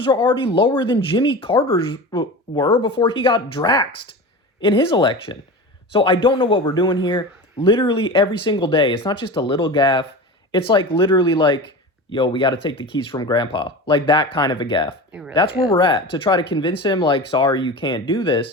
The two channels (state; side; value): normal; both; correlation 0.30